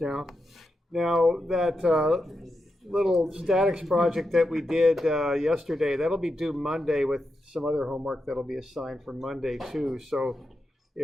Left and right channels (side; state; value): both; normal; correlation 0.86